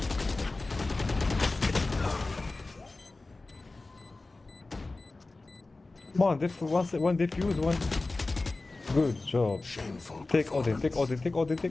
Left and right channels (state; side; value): quieter; right; 3.3 dB